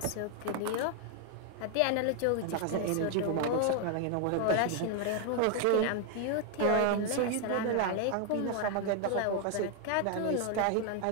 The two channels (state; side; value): different; both; correlation 0.00